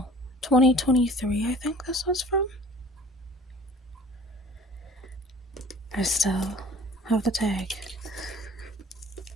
2023, I think this was from. I still have the tag.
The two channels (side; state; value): both; normal; correlation 0.48